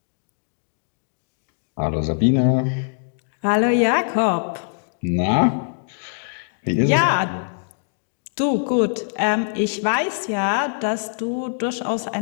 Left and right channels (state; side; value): silent; right; digital silence